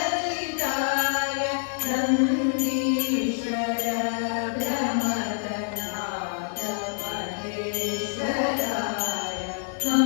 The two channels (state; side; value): silent; right; digital silence